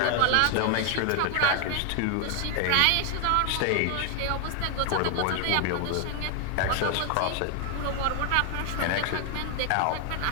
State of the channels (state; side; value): different; both; correlation 0.00